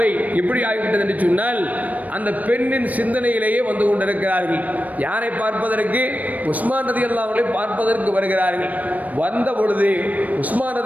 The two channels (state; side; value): late; left; 0.073 ms